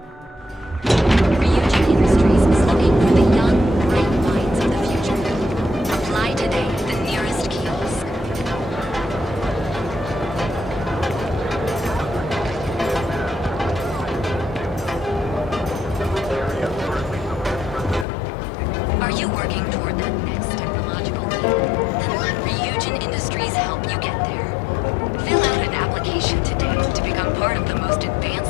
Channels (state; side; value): drops out; right; at 18.1 s